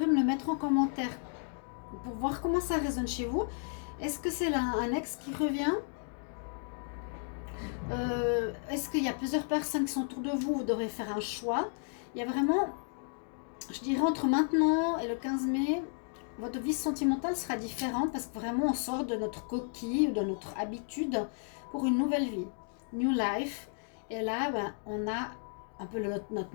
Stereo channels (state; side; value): silent; right; 56 dB below the other